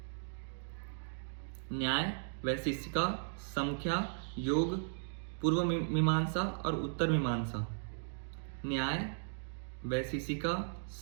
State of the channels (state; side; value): silent; left; digital silence